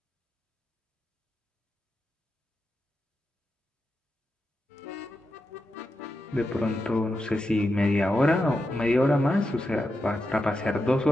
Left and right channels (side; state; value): both; normal; correlation 0.88